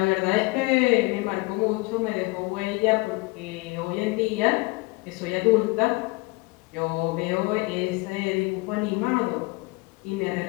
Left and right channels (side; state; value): right; quieter; 25.2 dB